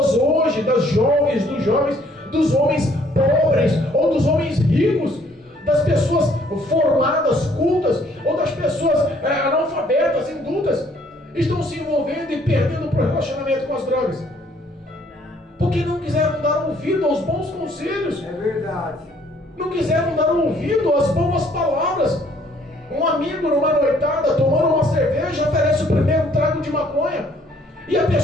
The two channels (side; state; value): both; normal; correlation 0.62